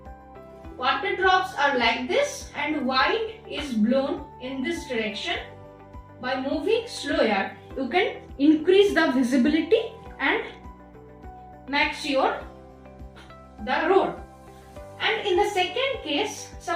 water drops are like this and wind is blown in this direction, by moving slower, you can increase the visibility and make sure the road. And in the second case,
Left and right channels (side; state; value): both; identical; correlation 1.00